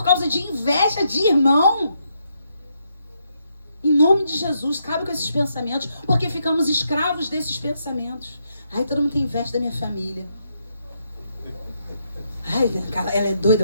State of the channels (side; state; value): both; inverted; correlation -0.78